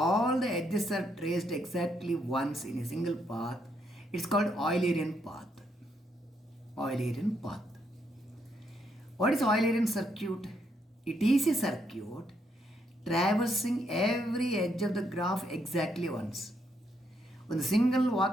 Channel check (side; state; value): both; normal; correlation 0.76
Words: all the edges are traced exactly once in a single path it's called Eulerian path. Eulerian path. What is Eulerian circuit? It is a circuit traversing every edge of the graph exactly once. ಒಂದು single